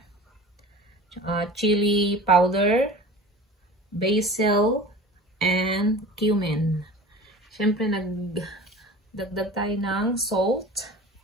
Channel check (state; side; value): normal; both; correlation 0.38